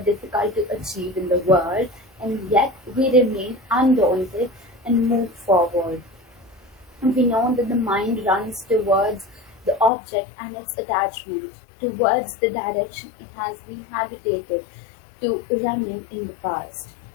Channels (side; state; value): right; drops out; at 9.9 s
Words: to achieve in the world, and yet we remain undaunted and move forward. And we know that the mind runs towards the object and its attachment, towards the direction it has been habituated to running in the past.